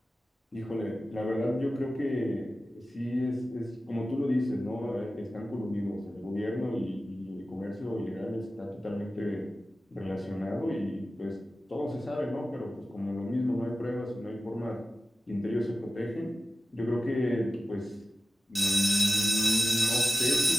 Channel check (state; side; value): normal; both; correlation 0.94